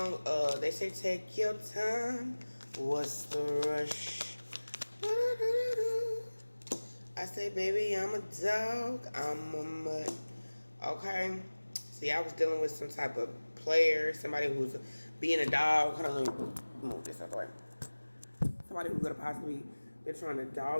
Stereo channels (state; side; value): inverted; both; correlation -1.00